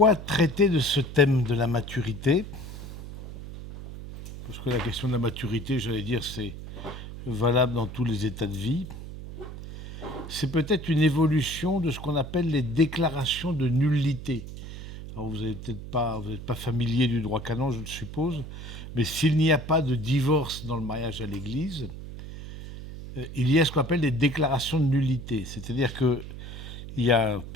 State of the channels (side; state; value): right; noise; hum, 11 dB below the sound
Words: traiter de ce thème de la maturité? Parce que la question de la maturité, j'allais dire, c'est valable dans tous les états de vie. C'est peut-être une évolution de ce qu'on appelle les déclarations de nullité. Alors vous n'êtes pas familier du droit canon, je le suppose, mais s'il n'y a pas de divorce dans le mariage à l'Église, il y a ce qu'on appelle les déclarations de nullité. C'est-à-dire qu'il y a un